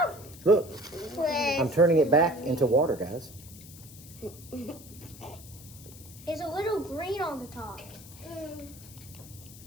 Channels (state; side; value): noise; left; hiss, 18 dB below the sound